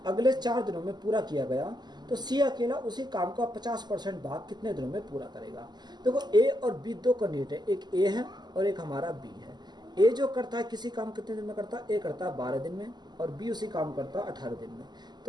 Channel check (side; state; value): left; late; 0.21 ms